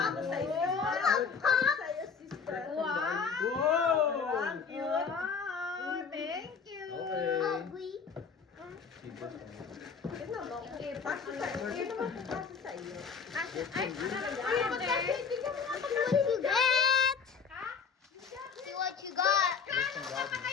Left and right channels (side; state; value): right; quieter; 5.8 dB